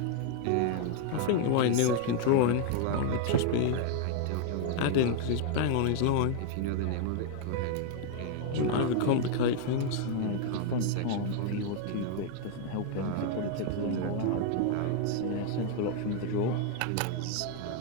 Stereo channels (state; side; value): different; both; correlation 0.00